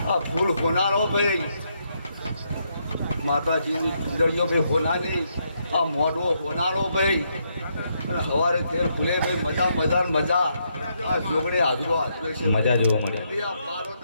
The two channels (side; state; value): both; inverted; correlation -0.77